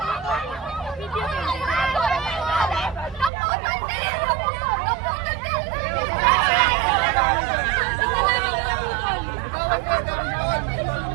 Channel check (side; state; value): left; drops out; at 3.3 s